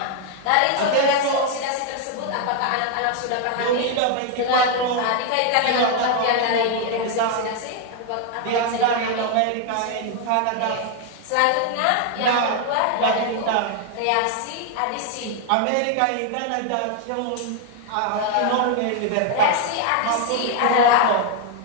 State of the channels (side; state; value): both; different; correlation 0.00